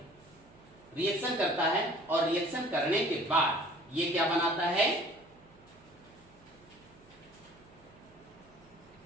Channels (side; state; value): right; noise; hum, 26 dB below the sound